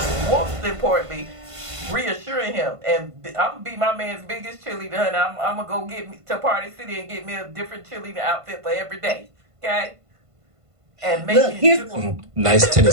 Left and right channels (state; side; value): late; left; 1.5 ms